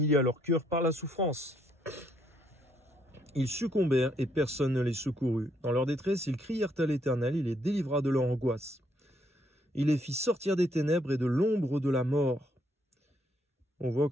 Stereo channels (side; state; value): both; normal; correlation 0.71